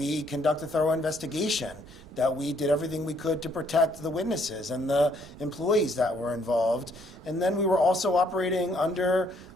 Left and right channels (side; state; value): both; normal; correlation 0.67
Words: conduct a thorough investigation, that we did everything we could to protect the witnesses and the employees that were involved. And then we were also operating under